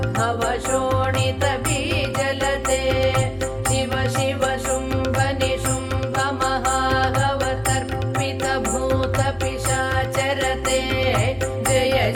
शोणित बीजलते शिव शिव शुम्भ निशुम्भ महाहवतर्पित भूत पिशाचरते जय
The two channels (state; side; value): identical; both; correlation 1.00